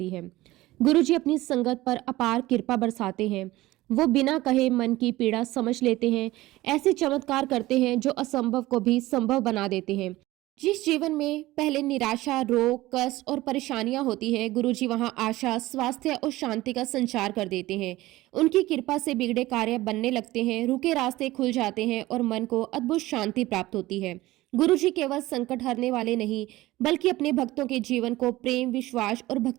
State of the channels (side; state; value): left; quieter; 17.8 dB